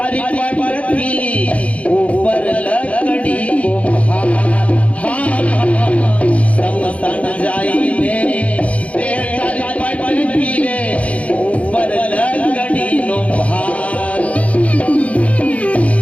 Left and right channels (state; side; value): late; right; 0.066 ms